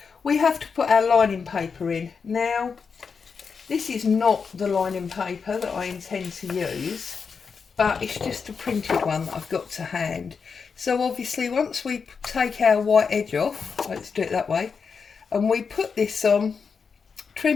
we have to put our lining paper in. Now This is not the lining paper that I intend to use, but it's just a printed one that I've got to hand. So obviously once we take our white edge off, let's do it that way, and we put this on,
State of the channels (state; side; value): quieter; right; 5.7 dB